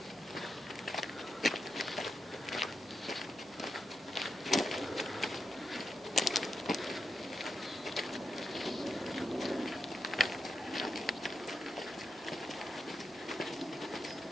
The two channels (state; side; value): normal; both; correlation 0.85